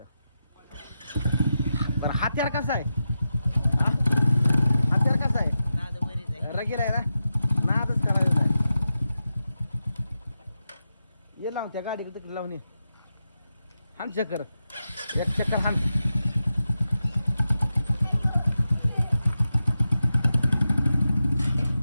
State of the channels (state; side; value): inverted; both; correlation -0.89